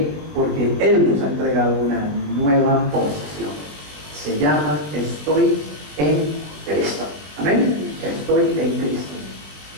Porque Él nos ha entregado una nueva posición. Se llama: estoy en Cristo. Amén. Estoy en Cristo.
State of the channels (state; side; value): late; left; 21 ms